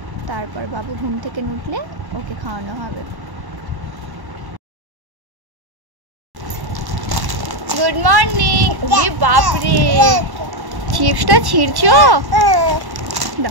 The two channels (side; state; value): left; late; 1.1 ms